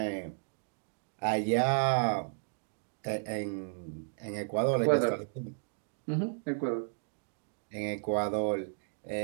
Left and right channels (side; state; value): left; silent; digital silence